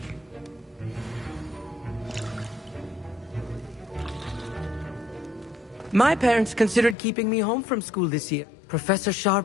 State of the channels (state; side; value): drops out; right; at 7.0 s